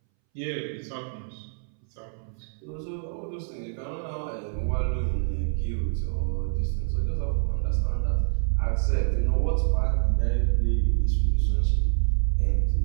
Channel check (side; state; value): left; silent; 61 dB below the other